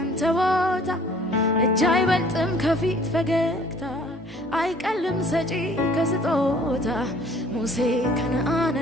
ቦታ እጅ አይበልጥም ከፊት ፈገግታ አይቀልም ሰጪ ከስጦታ ሙሴ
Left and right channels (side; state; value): both; normal; correlation 0.55